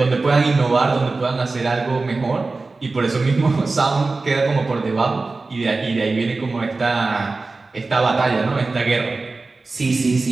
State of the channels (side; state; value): left; quieter; 3.6 dB